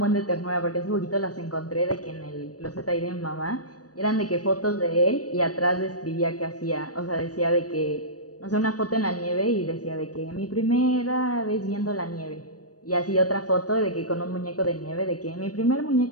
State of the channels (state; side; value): late; right; 0.68 ms